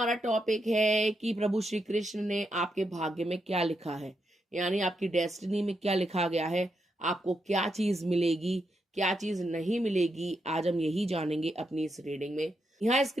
टॉपिक है कि प्रभु श्री कृष्ण ने आपके भाग्य में क्या लिखा है, यानी आपकी डेस्टिनी में क्या लिखा गया है, आपको क्या चीज मिलेगी, क्या चीज नहीं मिलेगी। आज हम यही जानेंगे अपनी इस रीडिंग में। यहाँ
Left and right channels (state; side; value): normal; both; correlation 0.83